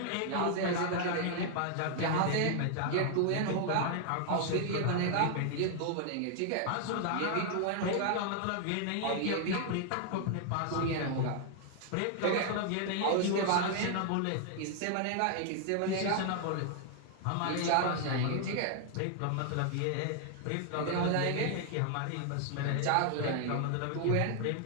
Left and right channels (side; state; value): both; different; correlation 0.00